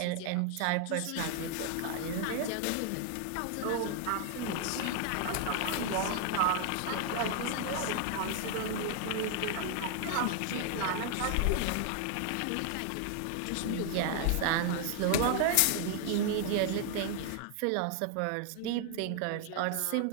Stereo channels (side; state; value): both; different; correlation 0.00